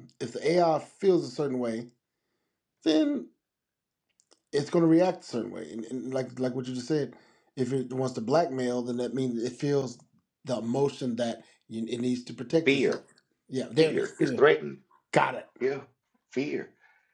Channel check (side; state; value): both; identical; correlation 1.00